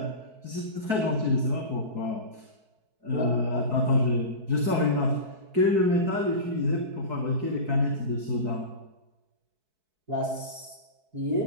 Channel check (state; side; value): late; left; 4.6 ms